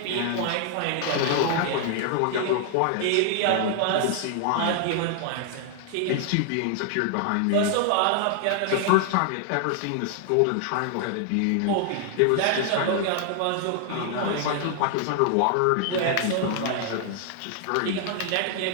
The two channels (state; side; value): different; both; correlation 0.00